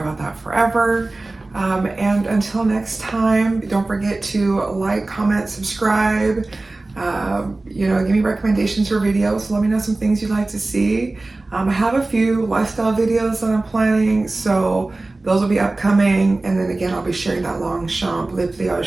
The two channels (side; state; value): left; quieter; 3.1 dB